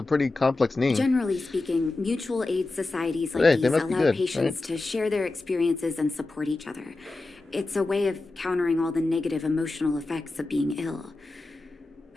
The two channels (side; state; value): right; quieter; 3.1 dB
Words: pretty complex name. Generally speaking, mutual aid societies like Hey, they these must be allow good, patients right? to share their experiences and support each other. It's a way of countering all the negative emotional effects of being ill.